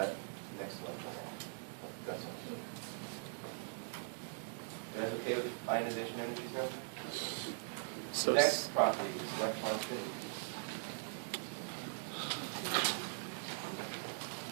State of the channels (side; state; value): left; silent; digital silence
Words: next electron off. That's all. You guys okay with ionization energies now? So Next property is electron affinity.